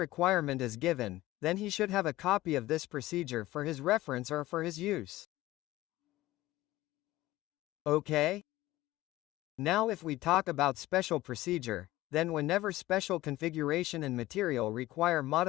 is given, then he should have a copy of this procedure for his reference or for his use. Okay? Now if we talk about special procedure, then whenever special configuration and material require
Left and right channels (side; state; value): right; quieter; 17.1 dB